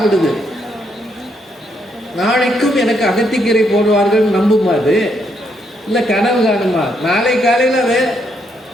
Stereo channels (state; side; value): normal; both; correlation 0.75